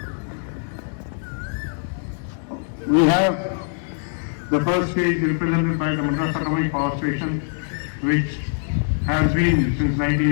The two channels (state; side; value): silent; right; digital silence